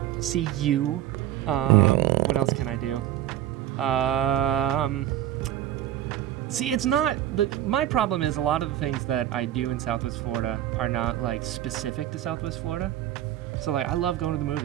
See you. What else can I do? See, it's not my problem is a lot of the things that I do in Southwest Florida are not like specific to Southwest Florida. So like I love going to the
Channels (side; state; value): left; quieter; 12.4 dB